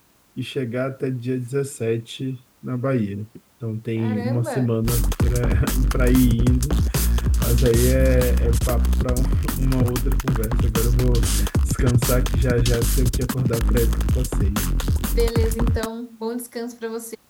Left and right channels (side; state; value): both; identical; correlation 1.00